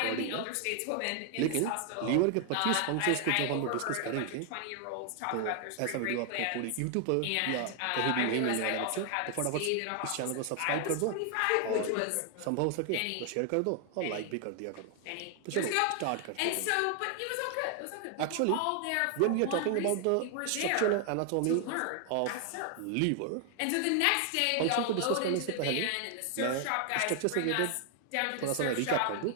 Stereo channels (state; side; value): different; both; correlation 0.00